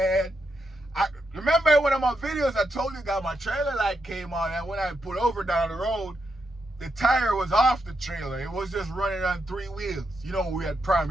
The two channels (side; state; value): both; normal; correlation 0.83